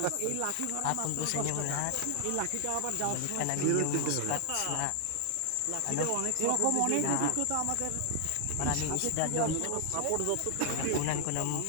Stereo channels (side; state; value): both; different; correlation 0.00